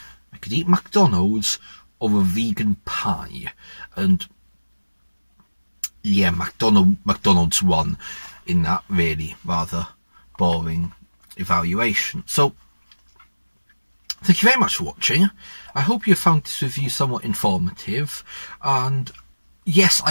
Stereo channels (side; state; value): both; inverted; correlation -1.00